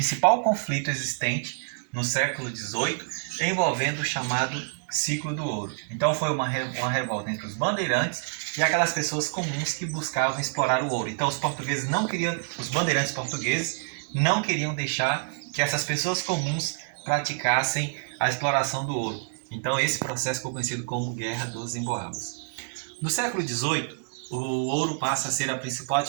conflito existente no século XVIII, envolvendo o chamado ciclo do ouro. Então foi uma revolta entre os bandeirantes e aquelas pessoas comuns que buscavam explorar o ouro. Então os portugueses não queriam, os bandeirantes portugueses não queriam deixar que essas pessoas comuns praticassem a exploração do ouro. Então esse processo foi conhecido como Guerra dos Emboabas. No século XVIII, o ouro passa a ser a principal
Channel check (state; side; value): silent; left; digital silence